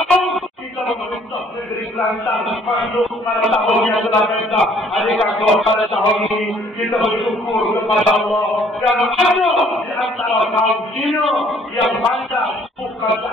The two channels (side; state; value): both; normal; correlation 0.60